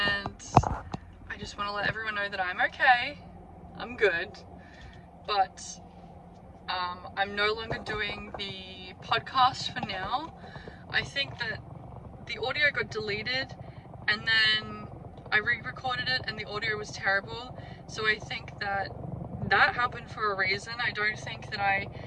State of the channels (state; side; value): identical; both; correlation 1.00